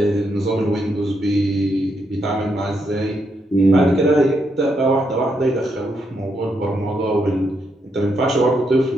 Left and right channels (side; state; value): both; normal; correlation 0.79